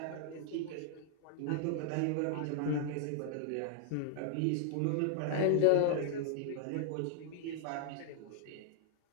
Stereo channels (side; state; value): both; different; correlation 0.00